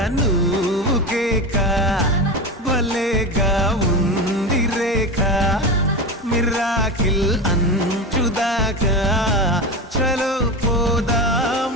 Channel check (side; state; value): both; normal; correlation 0.21